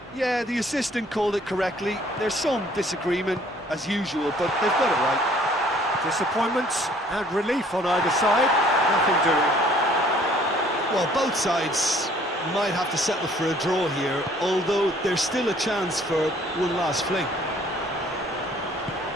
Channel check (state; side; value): normal; both; correlation 0.58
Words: Yeah, the assistant called it correctly. There's some disagreement, as usual, but they've got it right. Disappointments and relief on either side. Nothing doing. Well, both sides might have to settle for a draw here, although there's still a chance for one last fling.